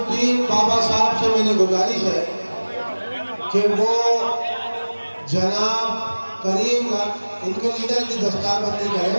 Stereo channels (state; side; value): inverted; both; correlation -1.00